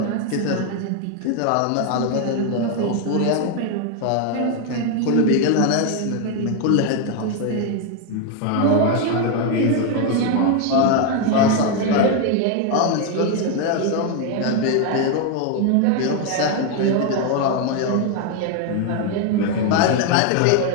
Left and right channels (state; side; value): different; both; correlation 0.01